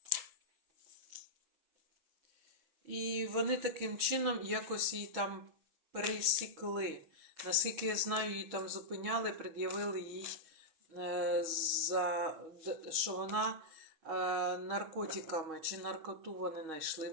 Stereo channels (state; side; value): late; left; 6.3 ms